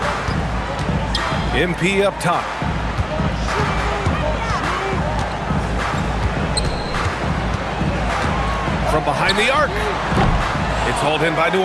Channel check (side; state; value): both; identical; correlation 1.00